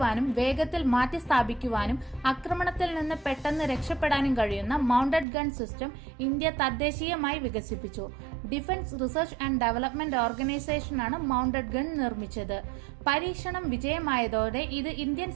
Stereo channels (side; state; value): left; drops out; at 5.2 s